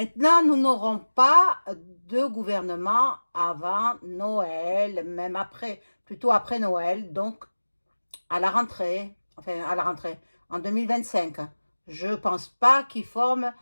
nous n'aurons pas de gouvernement avant Noël, même après, plutôt après Noël, donc à la rentrée, enfin à la rentrée, en 2025. Je pense pas qu'il forme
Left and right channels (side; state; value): both; inverted; correlation -1.00